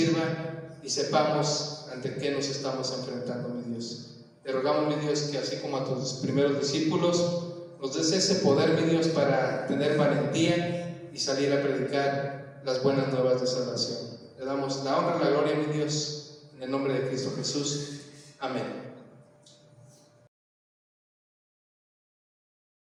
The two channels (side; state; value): both; identical; correlation 1.00